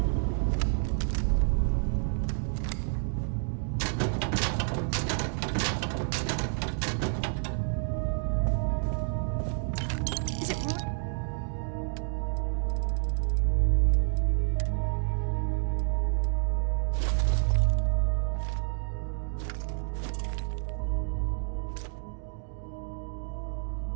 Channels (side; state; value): left; silent; 58 dB below the other